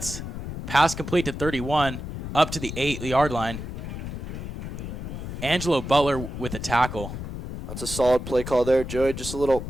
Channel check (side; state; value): left; noise; rumble, 7 dB below the sound